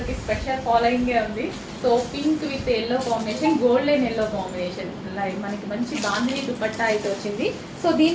కి స్పెషల్ ఫాలోయింగ్ ఉంది. So pink with yellow combination, golden yellow combination. మనకి మంచి బాంధిని దుపట్టా అయితే వచ్చింది. సో దీని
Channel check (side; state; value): both; identical; correlation 1.00